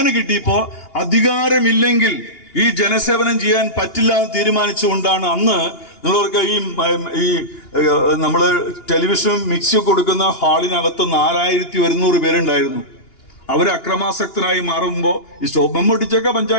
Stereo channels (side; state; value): right; late; 2.8 ms